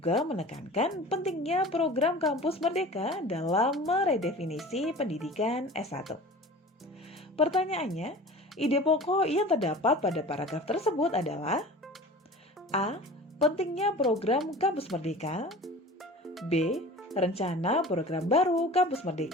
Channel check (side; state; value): both; normal; correlation 0.39